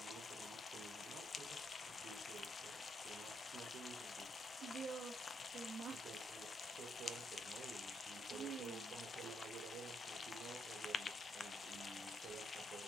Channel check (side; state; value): both; normal; correlation 0.77